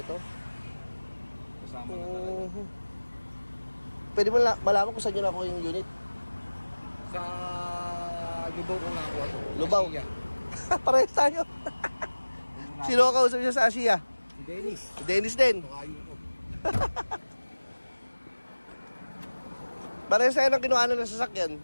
Kasama na talaga. Pwede mo malaman kung saan nyo nakuha yung unit? Sa Lubao ko nakuha to. Lubao? Parehas tayo. Sino ka kausap niya sa Asia? Si Dennis. Si Dennis din. Tukayo ko. Parehas tayo ng kinuha ng sasakyan.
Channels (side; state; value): both; inverted; correlation -1.00